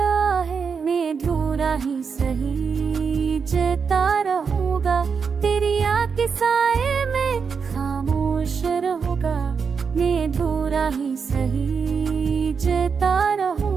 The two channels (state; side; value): quieter; left; 5.9 dB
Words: है। मैं अधूरा ही सही जता रहूंगा, तेरी आँख के साए में खामोश रहूंगा। मैं अधूरा ही सही जता